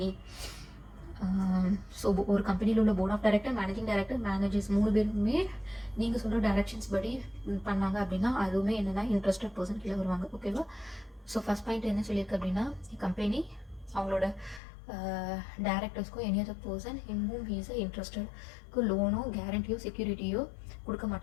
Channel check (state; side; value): drops out; right; at 14.6 s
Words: So ஒரு கம்பெனியில் உள்ள board of director, managing director, managers 3 பேருமே நீங்கள் சொல்கிற டைரக்ஷன்ஸ் படி பண்ணாங்க அப்படின்னா அதுவுமே என்னென்னா இன்ட்ரெஸ்டட் பர்சன் கீழே வருவாங்க. ஓகேவா? ஸோ ஃபஸ்ட் பாயிண்ட் என்ன சொல்லியிருக்கு அப்படின்னா, கம்பெனி அவங்களோட டைரக்டர்ஸ்க்கோ any other person in whom he is இன்ட்ரெஸ்டட்க்கு லோனோ கேரண்டியோ செக்யூரிட்டியோ கொடுக்க